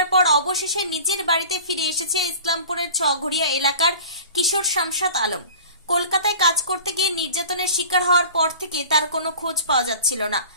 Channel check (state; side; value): inverted; both; correlation -0.41